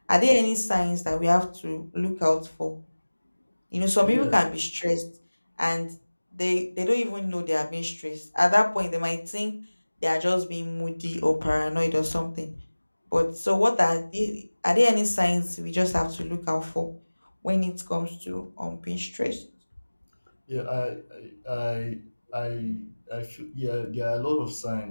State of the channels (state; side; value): inverted; both; correlation -1.00